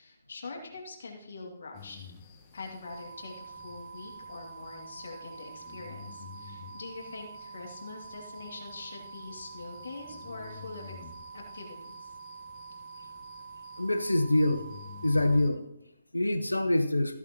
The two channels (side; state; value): both; inverted; correlation -0.93